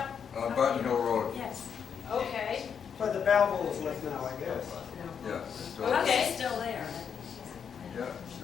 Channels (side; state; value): right; quieter; 7.2 dB